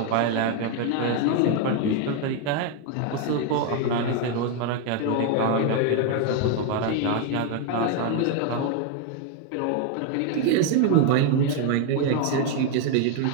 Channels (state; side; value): different; both; correlation 0.01